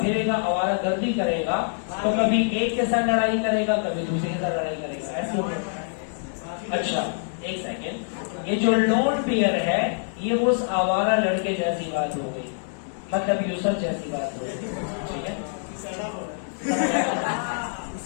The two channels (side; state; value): right; silent; digital silence